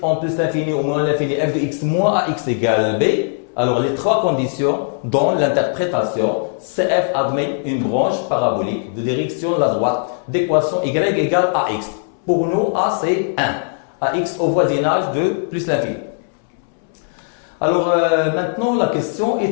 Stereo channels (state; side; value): silent; right; 67 dB below the other